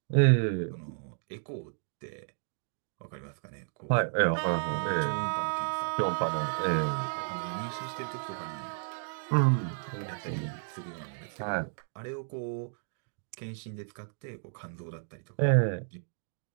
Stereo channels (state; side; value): silent; left; digital silence